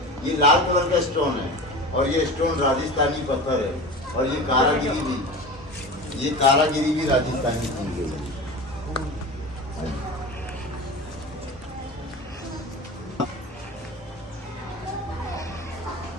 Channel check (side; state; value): both; normal; correlation 0.32